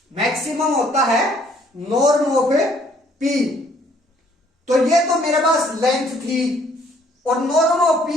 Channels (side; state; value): both; normal; correlation 0.62